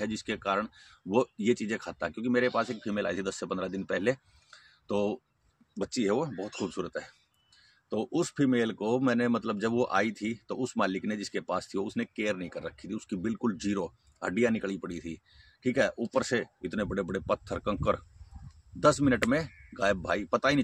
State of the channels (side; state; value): both; identical; correlation 1.00